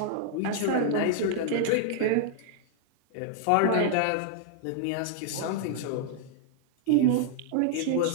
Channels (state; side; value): different; both; correlation -0.01